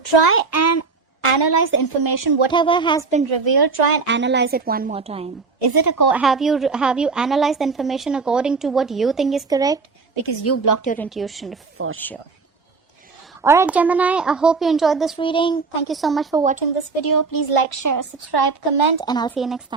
try and analyze the information. Whatever has been revealed, try and analyze it one more time. Is it have you analyzed the information according to what you think is correct? Because you blocked your intuition for sure. Alright, Gemini, I hope you enjoyed this reading. Thank you so much for watching this video. Please like, share, subscribe, comment, and I'll see you next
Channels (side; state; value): left; quieter; 4.5 dB